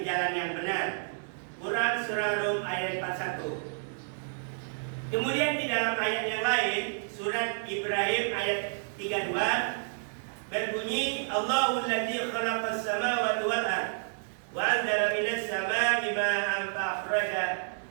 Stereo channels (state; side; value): silent; left; digital silence